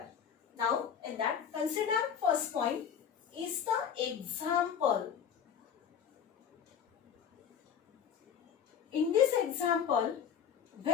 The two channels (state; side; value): quieter; right; 8.1 dB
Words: Now, in that, consider first point is the example. In this example,